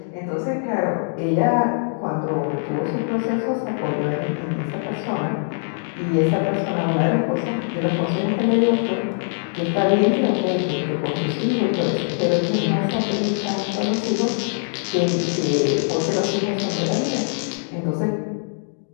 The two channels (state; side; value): silent; right; 64 dB below the other